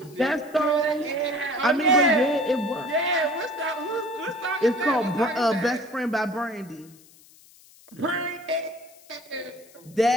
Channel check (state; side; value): noise; left; hiss, 25 dB below the sound